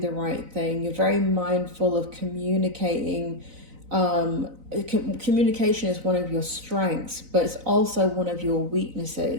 right thing. You're very mindful of communicating. Communication is one of your strengths, but it's also one of your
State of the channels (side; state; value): left; late; 4.0 ms